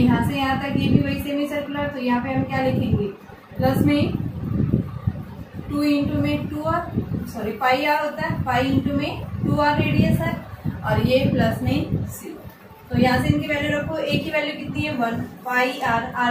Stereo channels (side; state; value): both; identical; correlation 1.00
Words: से यहाँ तक, ये भी वही सेमी सर्कुलर। तो यहाँ पे हम क्या लिखेंगे, प्लस में 2 इंटू में 2r, सॉरी पाई आर होता है, पाई इंटू में 2r रेडियस है, और ये प्लस में c। तो यहाँ से इनकी वैल्यू रखो। a की वैल्यू कितनी है 1, पाई आर,